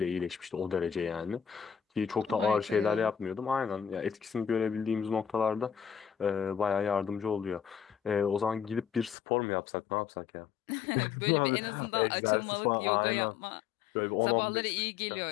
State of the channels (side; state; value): right; drops out; at 9.2 s